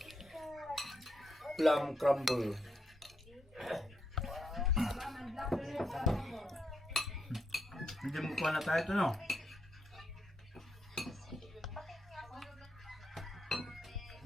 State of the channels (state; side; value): normal; both; correlation 0.79